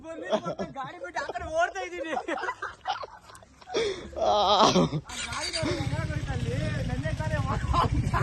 ಗಾಡಿ ಬಿಟ್ಟು ಆ ಕಡೆ ಓಡ್ತಾ ಇದ್ದೀನಿ.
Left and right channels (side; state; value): both; identical; correlation 1.00